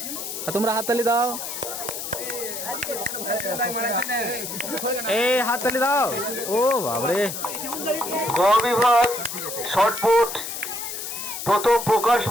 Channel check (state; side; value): noise; left; hiss, 6 dB below the sound